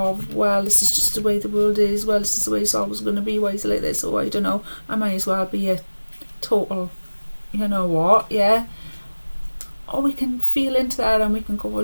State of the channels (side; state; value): both; inverted; correlation -1.00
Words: well, this is just the way the world is, well, this is the way it's always going to be, why is it like this, or I don't know, I might as well be a total, you know what, yeah. Or we can feel into that and we can go, well,